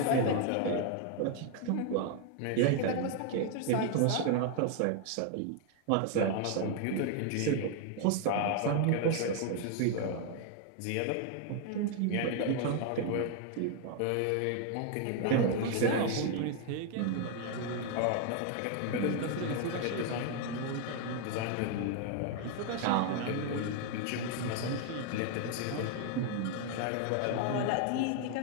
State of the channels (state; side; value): different; both; correlation 0.00